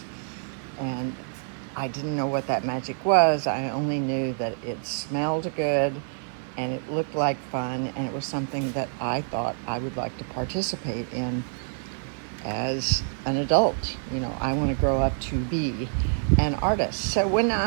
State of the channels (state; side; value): silent; left; 56 dB below the other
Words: and I didn't know what that magic was. I only knew that it smelled good, and it looked like fun, and it was something that I thought I would like to participate in as an adult. You know, I want to grow up to be an artist. So when